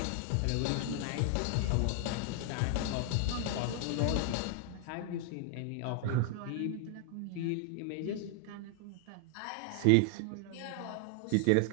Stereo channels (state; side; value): different; both; correlation 0.00